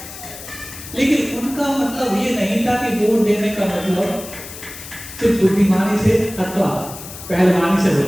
लेकिन उनका मतलब ये नहीं था कि वोट देने का मतलब सिर्फ बुद्धिमानी से अथवा पहलवानी से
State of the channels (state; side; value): noise; left; hiss, 13 dB below the sound